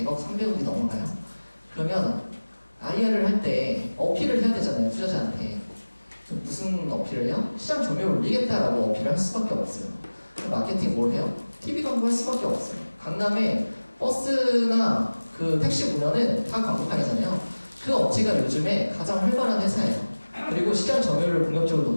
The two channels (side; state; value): both; inverted; correlation -1.00